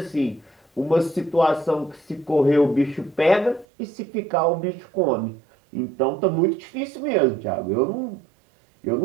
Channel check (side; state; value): left; drops out; at 3.7 s